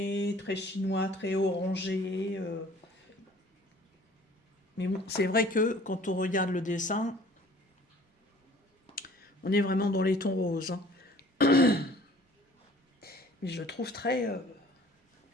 très chinois, très orangé. Mais bon, c'est vrai que quand on regarde le dessin, on est vraiment dans les tons roses, hein. Mais je le trouve très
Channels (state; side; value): normal; both; correlation 0.51